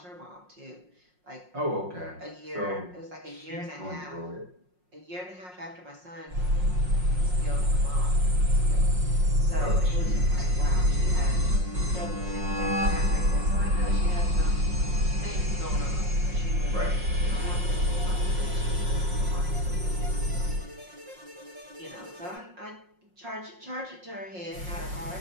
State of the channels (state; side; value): late; left; 5.5 ms